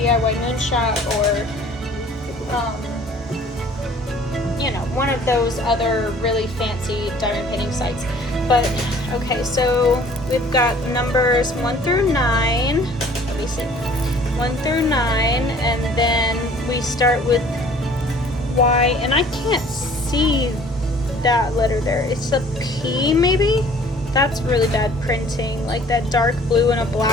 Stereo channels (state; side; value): normal; both; correlation 0.52